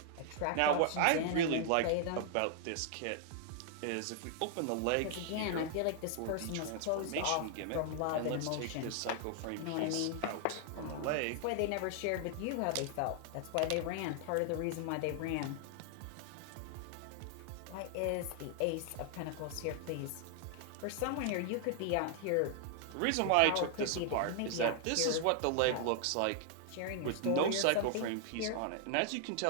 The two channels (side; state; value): both; different; correlation 0.00